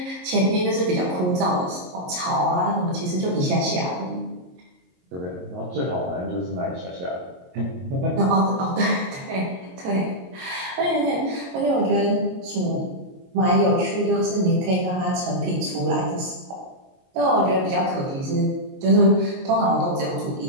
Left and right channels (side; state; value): left; late; 22 ms